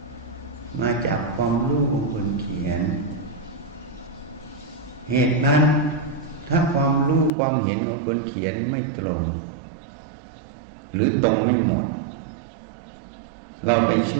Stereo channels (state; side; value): drops out; left; at 7.3 s